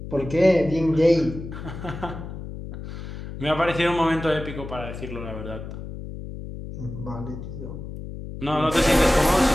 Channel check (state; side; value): noise; left; hum, 10 dB below the sound